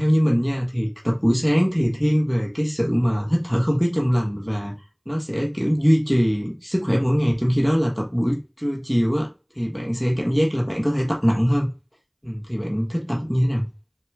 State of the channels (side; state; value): both; identical; correlation 1.00